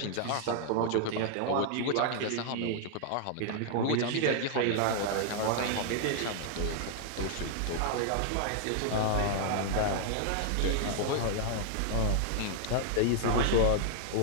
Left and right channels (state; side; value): different; both; correlation 0.00